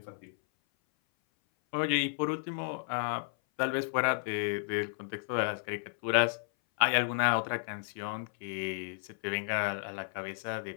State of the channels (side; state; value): right; silent; 56 dB below the other